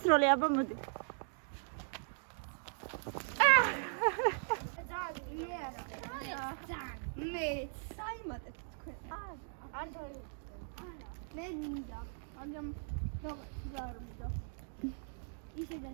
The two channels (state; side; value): silent; left; digital silence